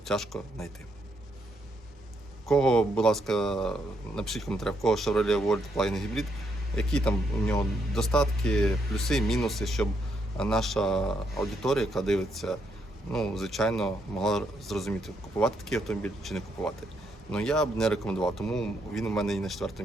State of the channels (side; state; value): both; normal; correlation 0.76